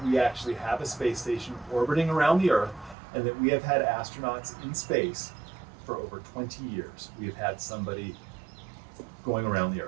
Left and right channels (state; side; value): drops out; left; at 3.0 s